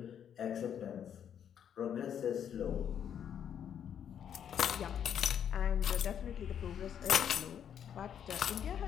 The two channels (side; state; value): right; quieter; 8.9 dB